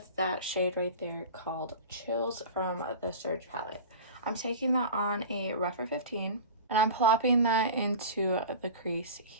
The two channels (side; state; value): both; inverted; correlation -0.34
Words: that shade right there called Chills from the Surge palette. I'm taking that on a rougher 15 and I'm plopping that into the crease